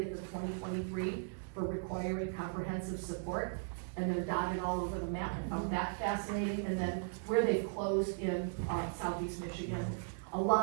of 2023 for requiring comprehensive support, and they're dotted all over the map. I found that fascinating, and then where they've closed in southeast Michigan, a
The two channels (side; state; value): left; silent; digital silence